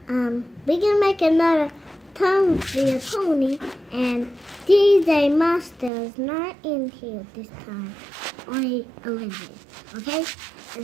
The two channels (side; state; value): left; drops out; at 5.9 s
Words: we can make another Tom via Pony, and DJ Master is not in here this time. Only Olivia, okay? And